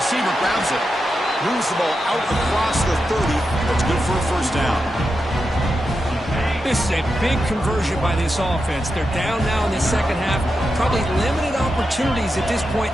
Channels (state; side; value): normal; both; correlation 0.88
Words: grabs it. Moves the ball out across the 30. That's good for a first down. This is a big conversion by this offense. They're down now in the second half. Probably limited opportunities at this point